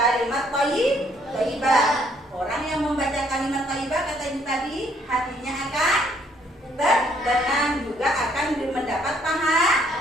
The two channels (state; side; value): normal; both; correlation 0.67